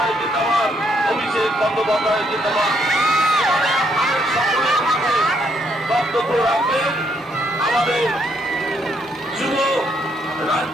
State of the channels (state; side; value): normal; both; correlation 0.73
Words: জিন্দাবাদ, অভিষেক বন্দ্যোপাধ্যায় জিন্দাবাদ। আপনাদের সকলের মাঝে বক্তব্য রাখবেন আমাদের যুব